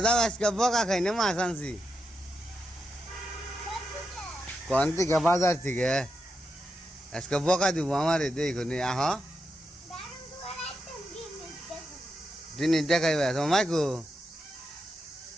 যাও, আজকে বকা খাই না মাছ আনছি। কোন থেকে? বাজার থেকে। আজকে বকা দিব আমারে, দেখো নি আহ জিনিস দেখাইবা তোমার মাইকো।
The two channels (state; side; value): normal; both; correlation 0.86